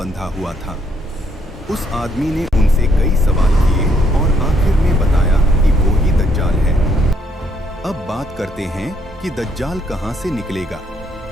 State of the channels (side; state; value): both; normal; correlation 0.71